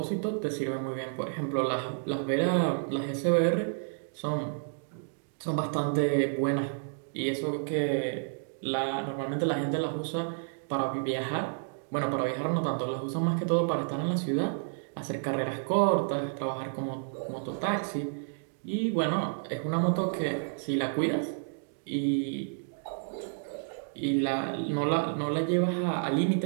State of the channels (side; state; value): left; silent; digital silence